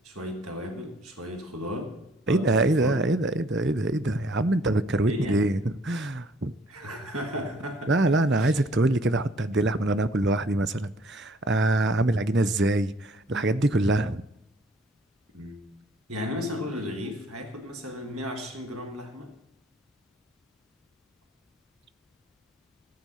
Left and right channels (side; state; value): both; normal; correlation 0.59